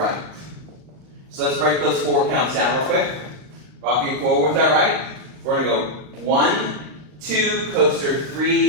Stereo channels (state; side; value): late; left; 39 ms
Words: So let's break those 4 counts down real quick. Rocking forward with our right. We're going to go 1, 2, coaster